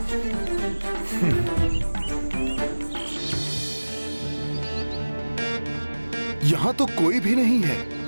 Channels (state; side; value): inverted; both; correlation -1.00